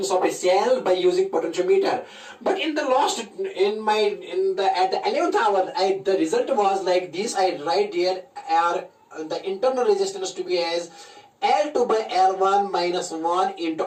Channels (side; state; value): both; identical; correlation 1.00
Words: of a cell by using potentiometer. But in the last at the 11th hour, the result was like this. I write here the internal resistance to be as L2 by L1 minus 1